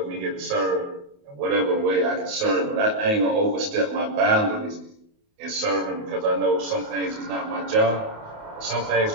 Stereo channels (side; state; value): left; late; 28 ms